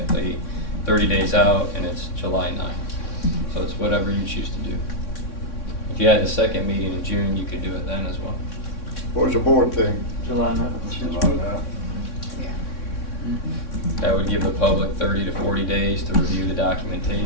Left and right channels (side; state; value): right; late; 3.6 ms